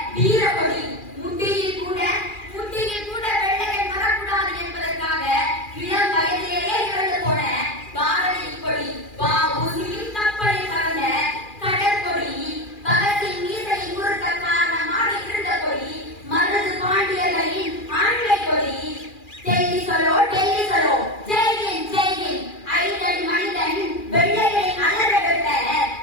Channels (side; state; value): right; late; 2.4 ms